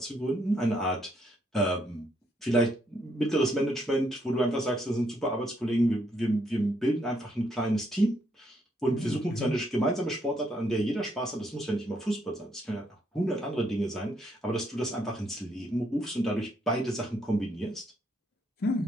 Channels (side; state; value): both; normal; correlation 0.73